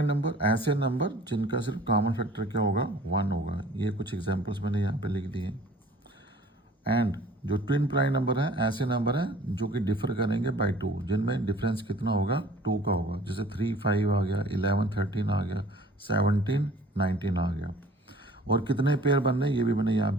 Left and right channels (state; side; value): normal; both; correlation 0.50